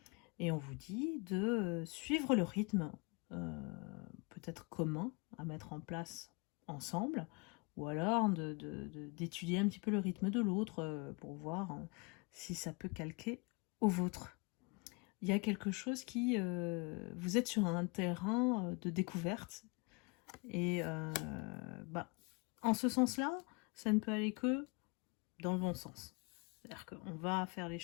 Et on vous dit de suivre le rythme, peut-être commun, à mettre en place ensemble, ou alors d'étudier un petit peu le rythme de l'autre pour voir si ça peut calquer au vôtre. il y a quelque chose qui... vous êtes sur un terrain de découverte. Et en ce sens-là, ça ne peut aller que dans le bon sens. C'est-à-dire qu'on va faire les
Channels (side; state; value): right; quieter; 30.6 dB